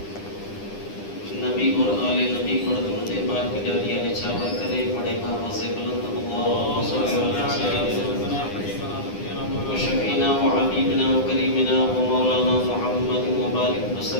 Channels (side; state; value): right; late; 9.9 ms